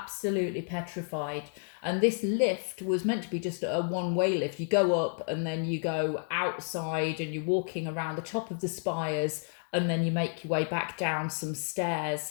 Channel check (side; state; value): right; silent; digital silence